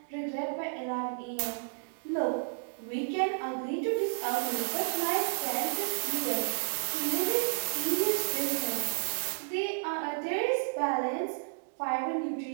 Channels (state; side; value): silent; left; digital silence